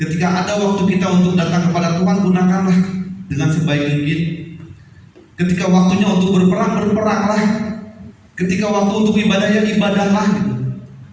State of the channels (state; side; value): identical; both; correlation 1.00